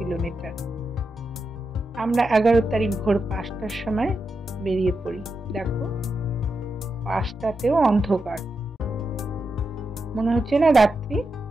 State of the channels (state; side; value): normal; both; correlation 0.87